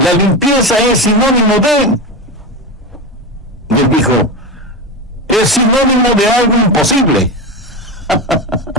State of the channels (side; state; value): both; normal; correlation 0.19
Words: limpieza es sinónimo de... Y él dijo: es sinónimo de algo imposible.